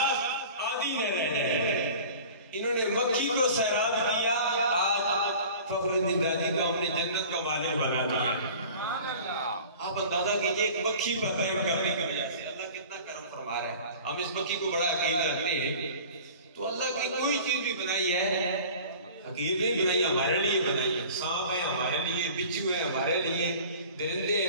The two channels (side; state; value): both; inverted; correlation -0.43